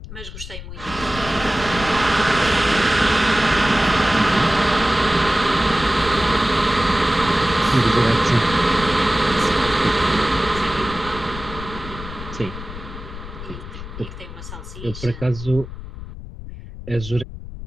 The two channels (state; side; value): noise; left; rumble, 12 dB below the sound